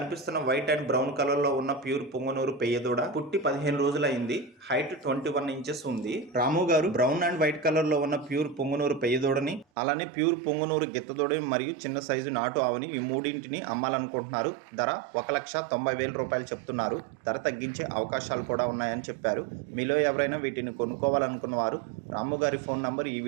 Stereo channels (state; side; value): drops out; left; at 9.7 s